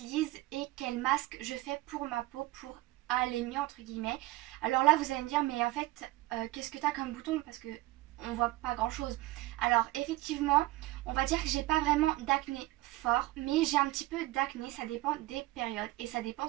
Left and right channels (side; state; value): left; quieter; 18.9 dB